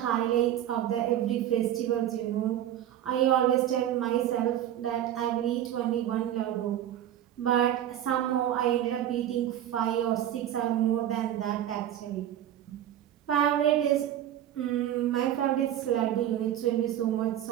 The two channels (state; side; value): quieter; left; 11.5 dB